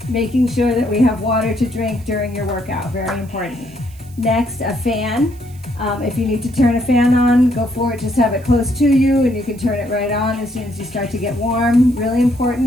Making sure that we have water to drink during your workout, very important. Next, a fan. If you need to turn a fan on, go for it. Just have it close to you and you can turn it right on as soon as you start to get warm. Really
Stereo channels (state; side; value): noise; right; hiss, 26 dB below the sound